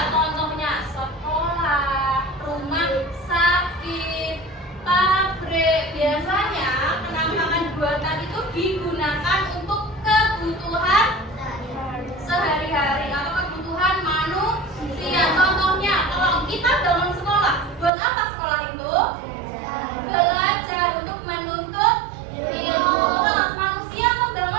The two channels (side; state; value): left; drops out; at 17.9 s